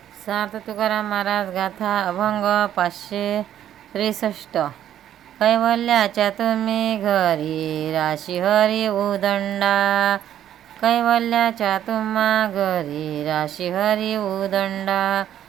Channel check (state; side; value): quieter; left; 11.0 dB